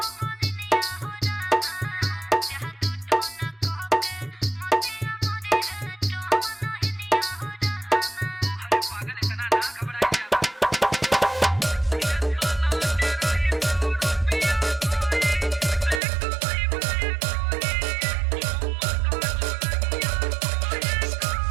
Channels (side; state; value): left; drops out; at 16.0 s